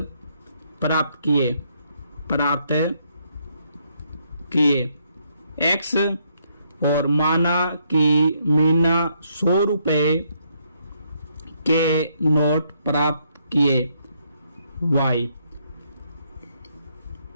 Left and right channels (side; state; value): both; inverted; correlation -0.72